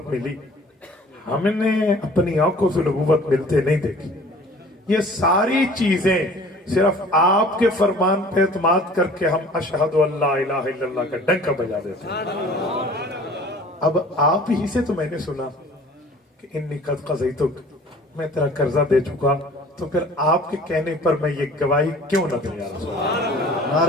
ملی, ہم نے اپنی آنکھوں سے نبوت ملتے نہیں دیکھی. یہ ساری چیزیں صرف آپ کے فرمان پہ اعتماد کر کے ہم اشہد ان لا الہ الا اللہ کا ڈنکا بجا دیتے ہیں. اب آپ ہی سے تو میں نے سنا کہ انی قد قضیتک, میں تیرا قرضہ دے چکا, تو پھر آپ کے کہنے پر میں یہ گواہی کیوں نہ دوں؟ یا رسول اللہ.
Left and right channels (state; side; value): normal; both; correlation 0.48